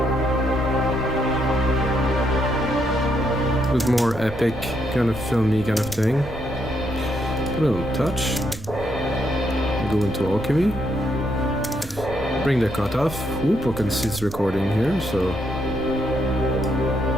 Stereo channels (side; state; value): right; noise; rumble, 13 dB below the sound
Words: Bit more epic, kind of filmy kind of thing. Put it on touch. Go into alchemy. Bring the cut off. Whoop, I can see it's recording here, so